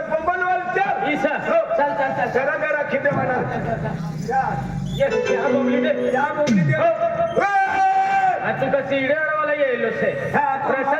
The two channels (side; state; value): both; identical; correlation 1.00